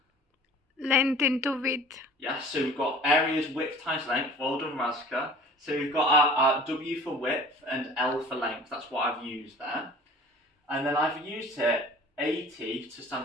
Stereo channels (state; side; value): normal; both; correlation 0.46